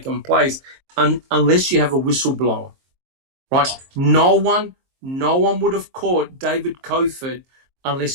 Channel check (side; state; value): left; late; 23 ms